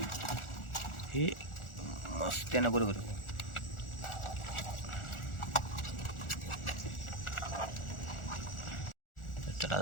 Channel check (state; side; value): late; right; 1.4 ms